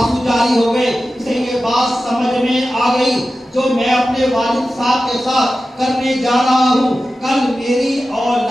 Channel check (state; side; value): normal; both; correlation 0.94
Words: جاری ہو گئے. اسے یہ بات سمجھ میں آ گئی جو میں اپنے والد صاحب کے ساتھ کرنے جا رہا ہوں, کل میری